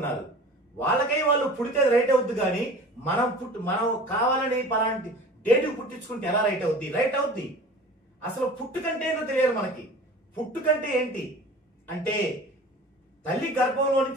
వాళ్ళకై వాళ్ళు పుడితే రైట్ అవుద్ది, కానీ మనం కావాలని పలాంటి డేట్ పుట్టించుకుంటే ఎలా రైట్ అవుద్ది? రైట్ అవుద్ది. అసలు పుట్టుకంటే ఏంటో తెలియదు మనకి. పుట్టుకంటే ఏంటి అంటే తల్లి గర్భంలో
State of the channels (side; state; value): both; normal; correlation 0.41